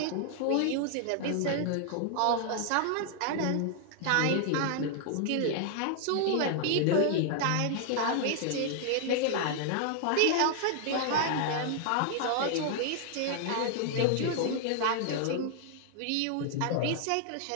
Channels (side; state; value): both; different; correlation 0.00